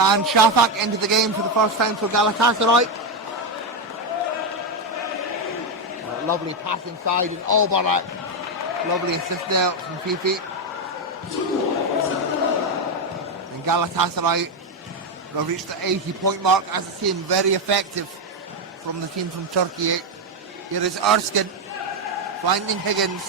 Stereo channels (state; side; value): normal; both; correlation 0.07